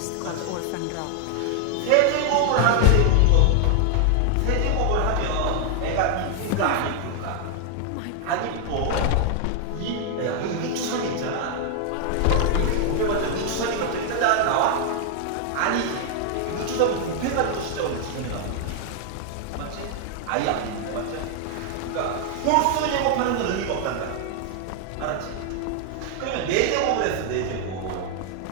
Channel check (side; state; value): both; different; correlation 0.00